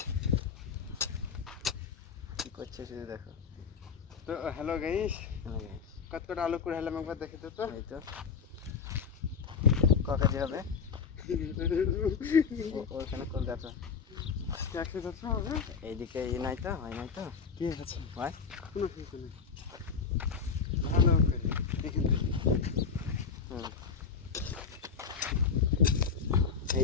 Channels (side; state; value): right; quieter; 5.9 dB